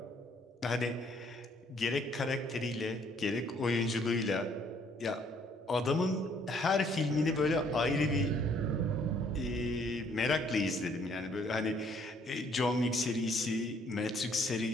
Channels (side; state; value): both; normal; correlation 0.64